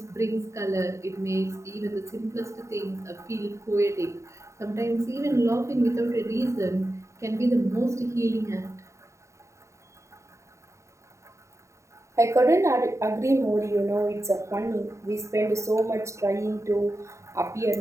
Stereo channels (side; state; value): left; late; 0.14 ms